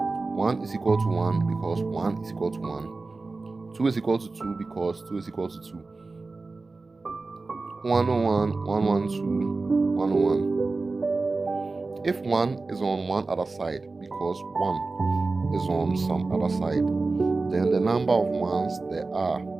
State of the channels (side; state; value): left; quieter; 3.7 dB